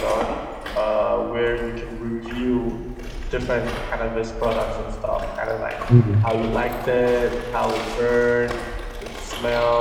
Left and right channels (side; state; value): both; identical; correlation 1.00